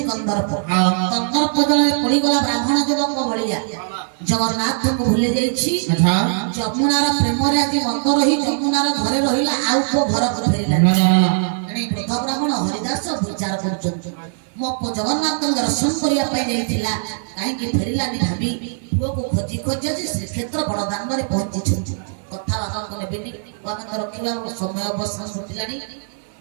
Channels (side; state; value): left; silent; 66 dB below the other